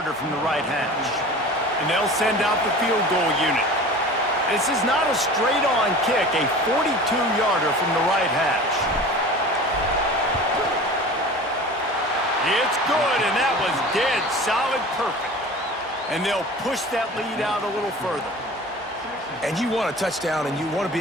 from the right hash. And they'll send out the field goal unit. This is not a straight-on kick, a 42-yarder from the right hash. It's good, and that was dead solid perfect. And they'll push that lead out a little further. And you want a touchdown, and you want to be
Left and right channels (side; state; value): both; normal; correlation 0.39